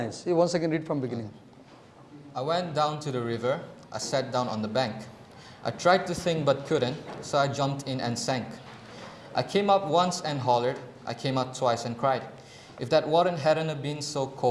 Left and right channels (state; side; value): identical; both; correlation 1.00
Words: You once again read from beginning. I went down to the river, I sat down on the bank. I tried to think but couldn't, so I jumped in and sank. I came up once and hollered, I came out twice and cried. If that water hadn't been so